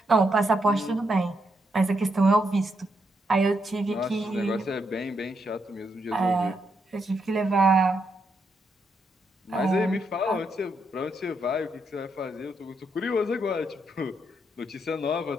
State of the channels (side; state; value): both; normal; correlation 0.79